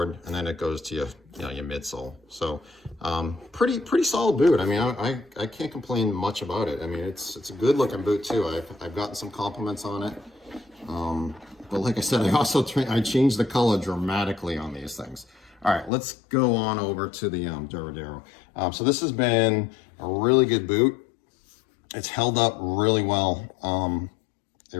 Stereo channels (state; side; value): drops out; right; at 15.9 s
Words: and then it goes to your midsole. So pretty solid boot. I mean, I can't complain much about it. I mean, it's a good looking boot too. I've gotten some compliments on it. But like I said, I changed the color dramatically on these things. All right, let's go on over to the Duradero. So this has been a really good boot. It's held up really well. It